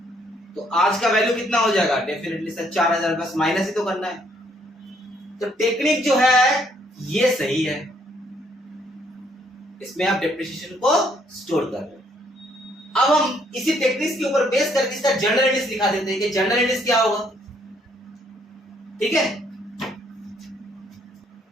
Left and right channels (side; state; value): both; normal; correlation 0.68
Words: तो आज का वैल्यू कितना हो जाएगा? डेफिनेटली सर 4,000, बस माइनस ही तो करना है। तो टेक्निक जो है ये सही है, इसमें आप डिप्रिसिएशन को स्टोर कर रहे हैं। अब हम इसी टेक्निक्स के ऊपर बेस करके इसका जनरल एंट्रीज दिखा देते हैं कि जनरल एंट्रीज क्या होगा। ठीक है,